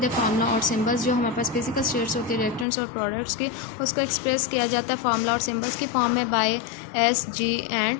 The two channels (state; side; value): drops out; right; at 2.7 s